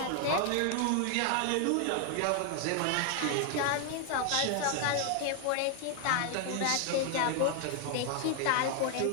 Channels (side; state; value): both; different; correlation 0.00